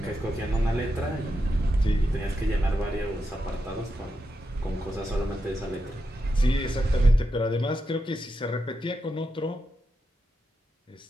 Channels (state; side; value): normal; both; correlation 0.86